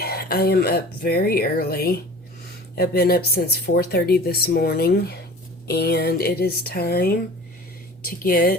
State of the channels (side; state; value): both; normal; correlation 0.42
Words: I am up very early. I've been up since 4:30 this morning, and it is time to